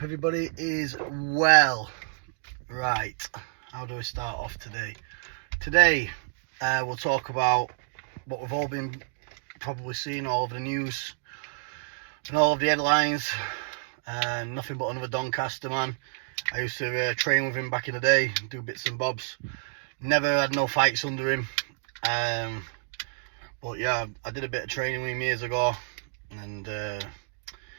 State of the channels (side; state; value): left; silent; digital silence